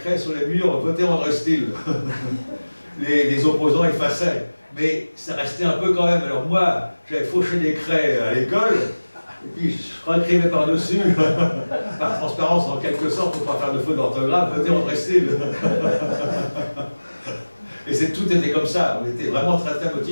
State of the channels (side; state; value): both; inverted; correlation -1.00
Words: sur les murs, votez André Steele. Les opposants effaçaient. Mais ça restait un peu quand même. Alors moi, j'avais fauché des craies à l'école, et puis je réécrivais par-dessus, par transparence en quelque sorte, pour ne pas faire de faute d'orthographe, votez André Steele. Et tout était comme ça, on était vraiment très très